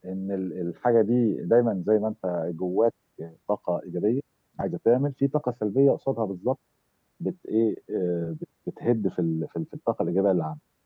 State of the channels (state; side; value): identical; both; correlation 1.00